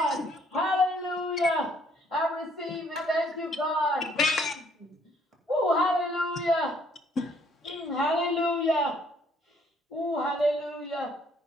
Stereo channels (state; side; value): normal; both; correlation 0.64